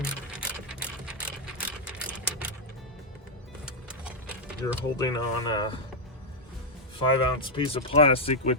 You're holding on a 5-ounce piece of plastic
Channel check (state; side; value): normal; both; correlation -0.02